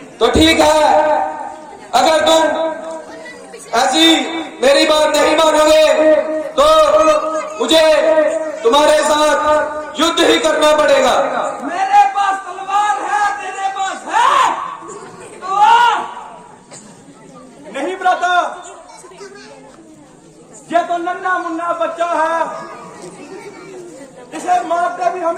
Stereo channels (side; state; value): both; identical; correlation 1.00